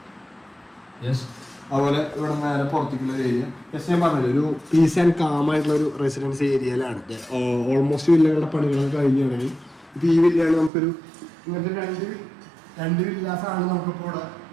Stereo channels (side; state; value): left; drops out; at 10.7 s